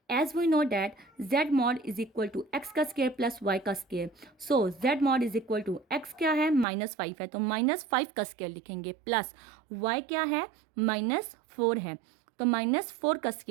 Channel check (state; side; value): drops out; left; at 6.7 s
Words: As we know that z mod is equal to x का स्क्वायर प्लस y का square. So z mod is equal to x क्या है, -5 है, तो -5 का स्क्वायर लिखेंगे, प्लस y क्या है, -4 है, तो -4 का